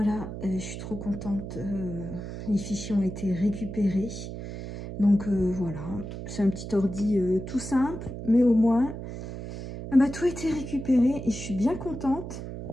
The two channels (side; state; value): right; noise; hum, 8 dB below the sound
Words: je suis trop contente. Les fichiers ont été récupérés. Donc voilà, c'est un petit ordi tout simple, mais au moins, tout a été récupéré et je suis bien contente.